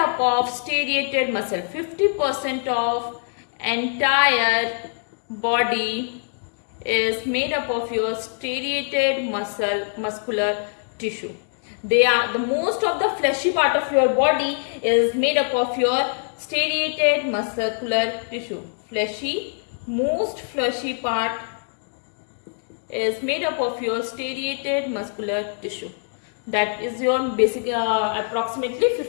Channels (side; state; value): right; silent; digital silence